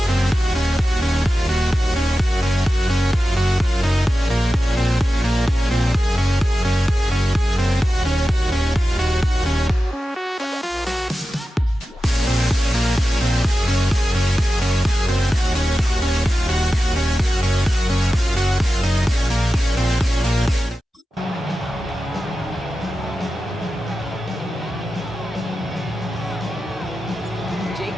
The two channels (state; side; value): normal; both; correlation 0.93